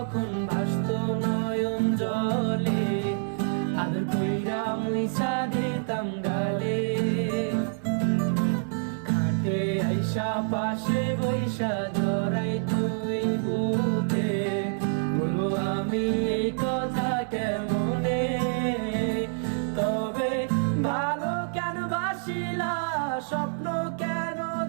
ভাসত নয়ন জলে, আদর কইরা মুইসা দিতাম গালে। খাটে আইসা পাশে বৈশা জড়াইতো এই বুকে, বলো আমি এই কথা কেমনে। তবে ভালো কেন বাসিলা, স্বপ্ন কেন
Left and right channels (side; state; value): left; silent; 60 dB below the other